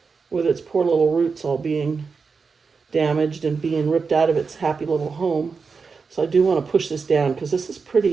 with its poor little roots all being damaged and being ripped out of its happy little home. So I do want to push this down because this is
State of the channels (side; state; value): left; quieter; 5.0 dB